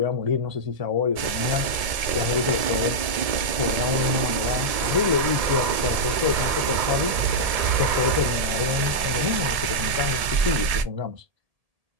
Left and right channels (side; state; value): left; late; 1.7 ms